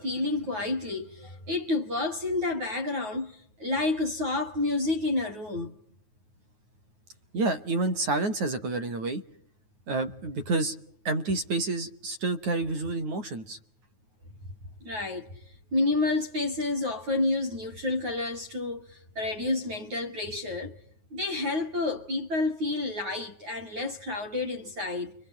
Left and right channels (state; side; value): late; left; 9.4 ms